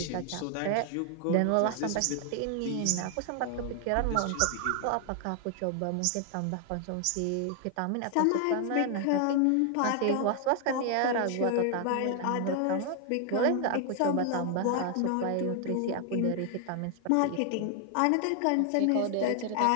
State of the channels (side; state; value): both; different; correlation 0.00